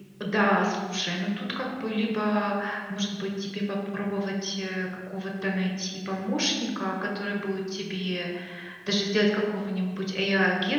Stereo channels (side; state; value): both; identical; correlation 1.00